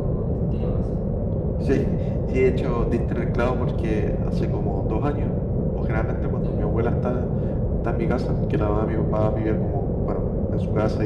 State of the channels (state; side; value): identical; both; correlation 1.00